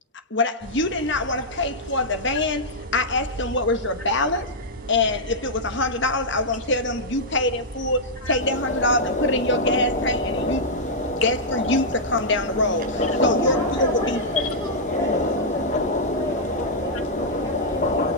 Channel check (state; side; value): normal; both; correlation -0.08